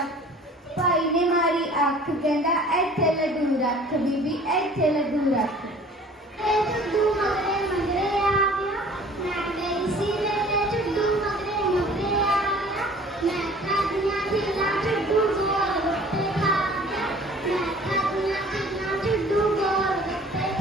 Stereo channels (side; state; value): both; normal; correlation 0.49